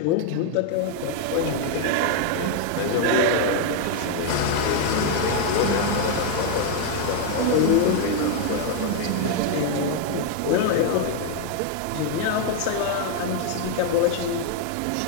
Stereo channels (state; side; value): different; both; correlation 0.00